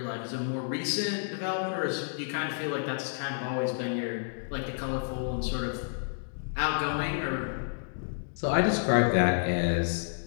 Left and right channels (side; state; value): right; silent; digital silence